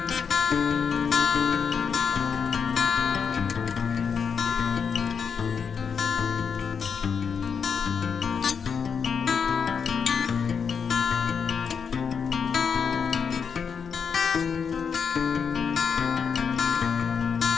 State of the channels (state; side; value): quieter; right; 6.4 dB